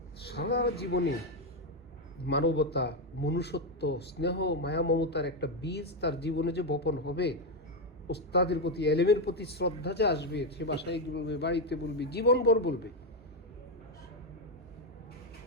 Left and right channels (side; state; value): both; normal; correlation 0.06